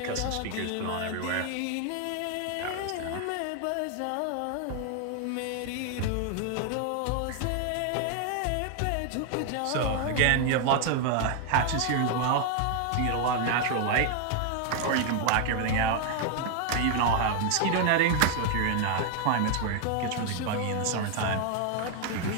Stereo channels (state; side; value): different; both; correlation 0.00